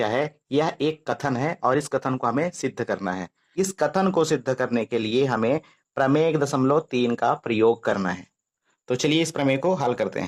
है। यह एक कथन है और इस कथन को हमें सिद्ध करना है। इस कथन को सिद्ध करने के लिए हमें प्रमेय 1.3 का प्रयोग करना है। तो चलिए इस प्रमेय को हल करते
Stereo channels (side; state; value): both; identical; correlation 1.00